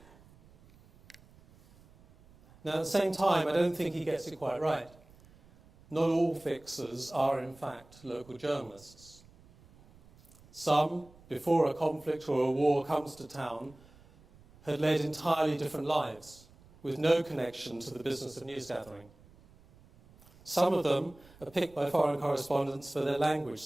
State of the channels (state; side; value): noise; right; rumble, 26 dB below the sound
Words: Now, at the same time, I don't think he gets it quite right. Not all fixers are, in fact, local journalists. Some, before a conflict or a war comes to town, had led entirely different lives, with no connection to the business of news gathering. Some of them are picked by foreign correspondents for their language